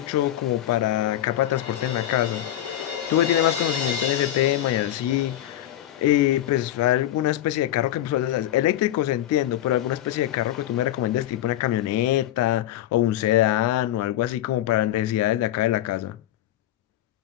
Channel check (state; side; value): quieter; right; 12.8 dB